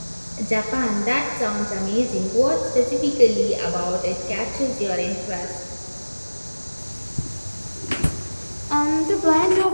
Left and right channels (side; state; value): both; inverted; correlation -1.00